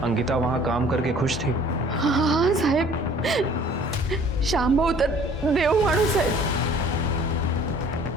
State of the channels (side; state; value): both; normal; correlation 0.52